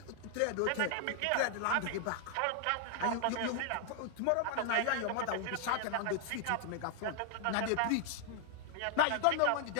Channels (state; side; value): different; both; correlation 0.00